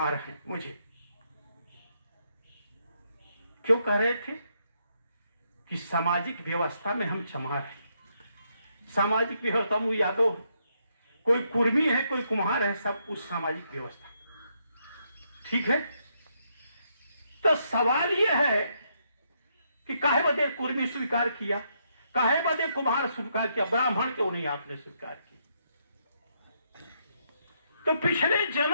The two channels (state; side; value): inverted; both; correlation -0.77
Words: हैं। मुझे क्यों कह रहे थे? कि सामाजिक व्यवस्था में हम चमार हैं। सामाजिक व्यवस्था में यादव, कोई कुर्मी है, कोई कुम्हार है, सब उस सामाजिक व्यवस्था। ठीक है, तो सवाल यह है कि काहे बदे कुर्मी स्वीकार किया, काहे बदे कुम्हार स्वीकार किया, ब्राह्मण क्यों नहीं आपने स्वीकार किया? तो पिछले